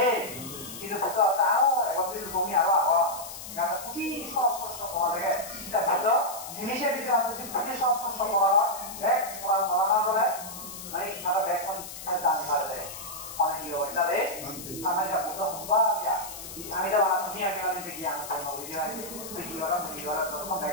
এই কিন্তু বলতে হবে আরো 31 লোক আমি আরো আগে এটা খুবই সস্ত পাওয়া যায় এটা বলতো জিনিসের ভিতরে আছে খুবই সস্ত পাওয়া এক পড়া মানা বলে মানে আরো ব্যাক কোন জান পারে মানে কি হয় তাহলে আমরা যা বলতে হবে আমি যা বানা তুমি আমি মানে দেখি আমি কোন ভিডিও আছে দেখি ওরা তখন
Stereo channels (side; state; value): left; noise; hiss, 11 dB below the sound